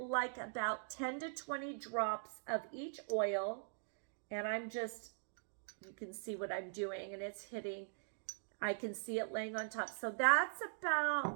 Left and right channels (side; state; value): left; silent; digital silence